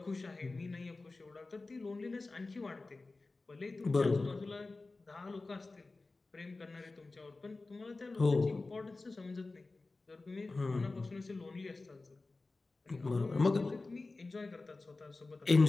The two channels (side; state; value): right; quieter; 3.4 dB